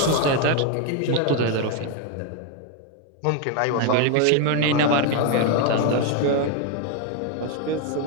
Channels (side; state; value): both; different; correlation 0.01